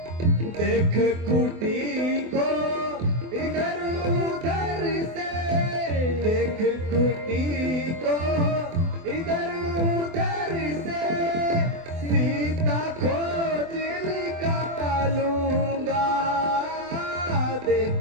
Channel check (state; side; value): late; left; 24 ms